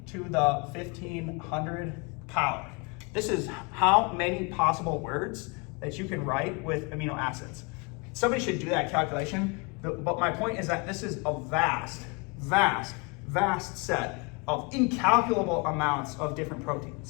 to the 1500 power. This is how many possible words that you can write with amino acids. Somebody should do that calculation, but my point is that this is a vast, vast vast set of incalculable amounts of different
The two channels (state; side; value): quieter; right; 30.6 dB